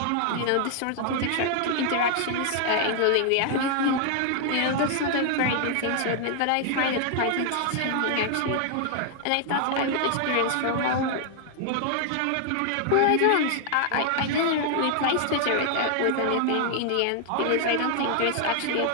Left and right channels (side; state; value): both; different; correlation 0.00